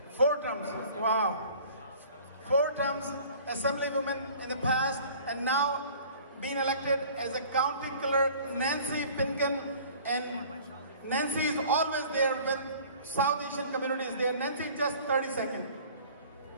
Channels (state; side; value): inverted; both; correlation -0.48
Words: 4 terms, wow. 4 terms Assemblywoman in the past, and now being elected as a county clerk, Nancy Pinkin. And Nancy is always there when South Asian community is there. Nancy, just 30 seconds.